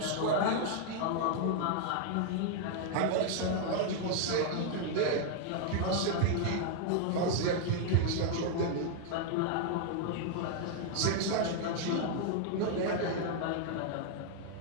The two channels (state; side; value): different; both; correlation 0.00